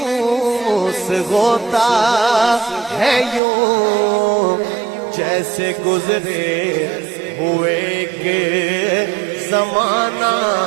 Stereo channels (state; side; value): drops out; left; at 3.4 s